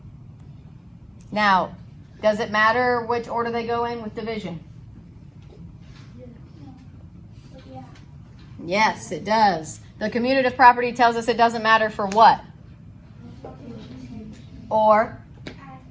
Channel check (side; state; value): both; identical; correlation 1.00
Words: Now, does it matter which order they go in with division? Yeah. Yes, it does. The commutative property tells us it doesn't matter for what? Or